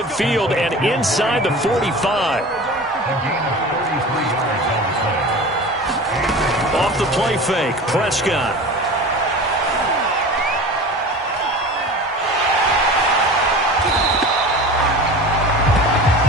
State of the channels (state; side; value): normal; both; correlation 0.35